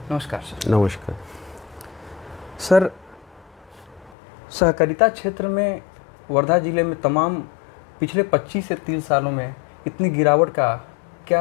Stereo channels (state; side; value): drops out; right; at 4.2 s